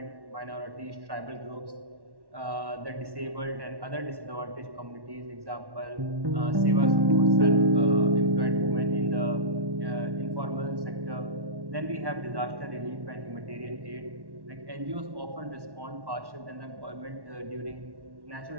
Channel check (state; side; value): late; left; 1.1 ms